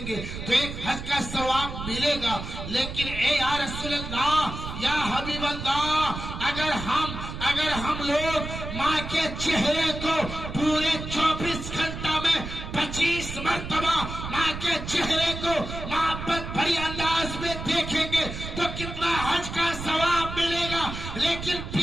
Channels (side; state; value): right; noise; rumble, 7 dB below the sound